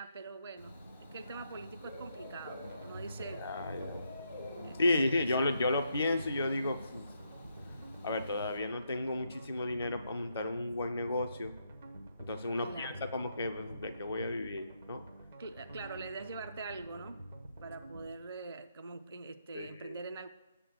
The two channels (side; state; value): both; inverted; correlation -0.79